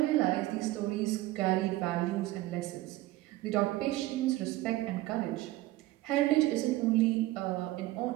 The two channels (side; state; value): left; quieter; 17.3 dB